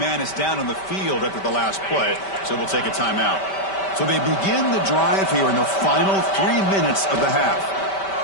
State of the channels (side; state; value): right; late; 5.2 ms